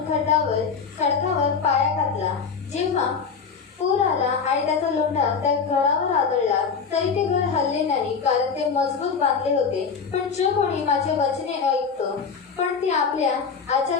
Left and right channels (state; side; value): quieter; right; 5.7 dB